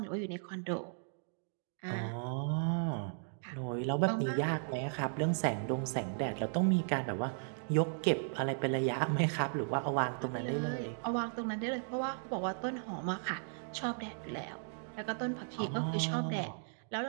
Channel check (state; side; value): silent; left; digital silence